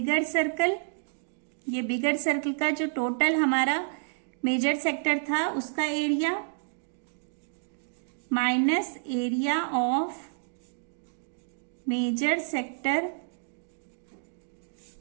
circle. ये बिगर सर्कल का जो टोटल हमारा मेजर सेक्टर था उसका area minus area of major sector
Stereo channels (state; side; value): silent; left; digital silence